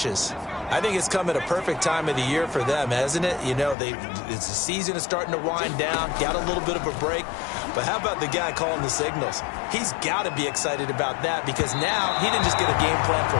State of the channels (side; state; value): right; drops out; at 3.8 s